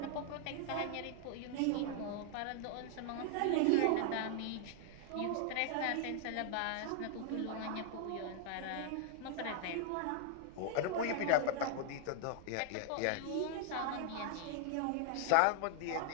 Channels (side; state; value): both; different; correlation 0.00